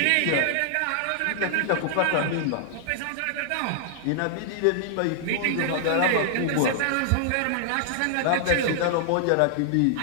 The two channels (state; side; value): different; both; correlation -0.01